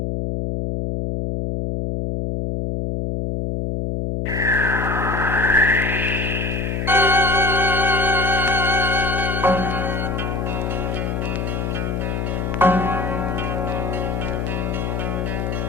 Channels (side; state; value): left; noise; hum, 1 dB below the sound